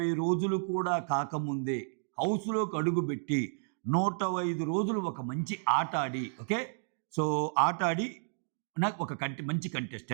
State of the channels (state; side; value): silent; left; digital silence